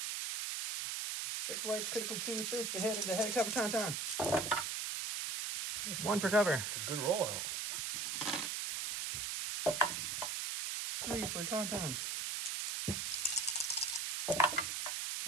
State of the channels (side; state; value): right; noise; hiss, 2 dB below the sound